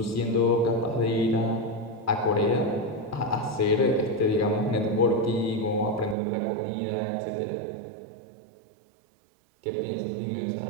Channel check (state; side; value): drops out; left; at 6.2 s